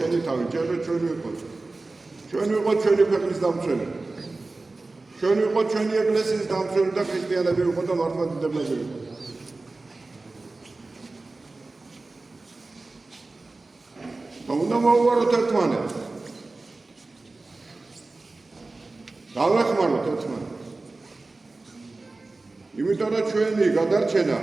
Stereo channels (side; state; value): left; quieter; 3.3 dB